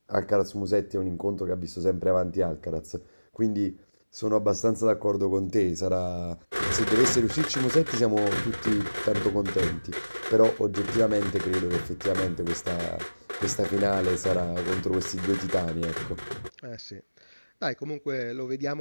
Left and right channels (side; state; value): both; inverted; correlation -1.00